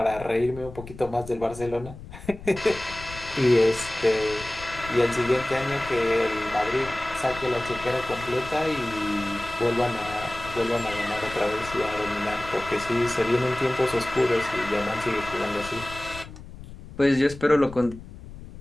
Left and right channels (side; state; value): left; noise; rumble, 15 dB below the sound